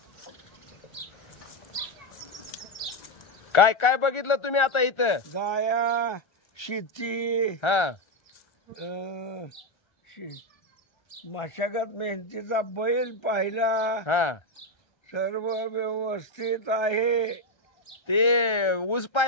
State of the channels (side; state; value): right; late; 1.3 ms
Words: काय काय बघितलं तुम्ही आता इथं? गाया, शेती, मशागत मेहनतीचा बैल पाहिला, सर्व व्यवस्थित आहे। ते ऊस